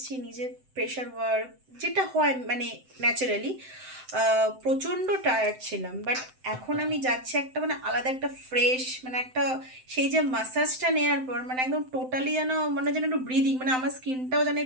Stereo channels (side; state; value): left; late; 7.8 ms